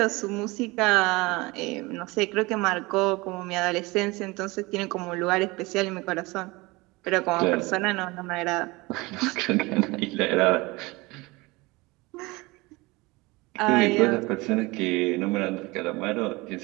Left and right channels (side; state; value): left; quieter; 23.1 dB